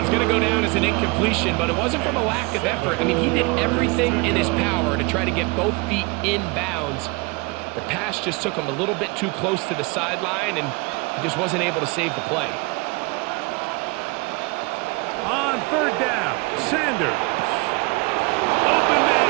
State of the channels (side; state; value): left; quieter; 27.2 dB